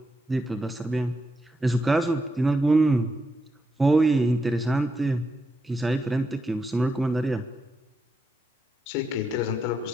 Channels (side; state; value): both; normal; correlation 0.84